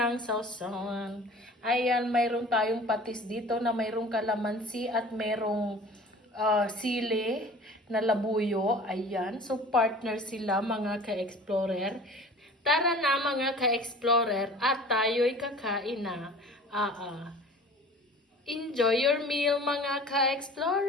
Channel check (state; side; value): normal; both; correlation 0.44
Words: sausawan. Ayan, mayroon tayong patis dito na mayroong kalamansi at mayroong sili na labuyo. Ayan, so partner sila mga ka-explorer. Tara na mga ka-explorer at tayo'y kakain na. Enjoy your meal mga